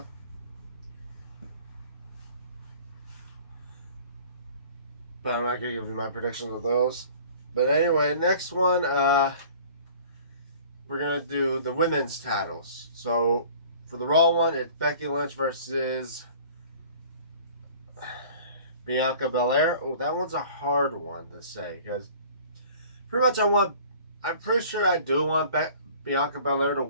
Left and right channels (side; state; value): both; inverted; correlation -0.48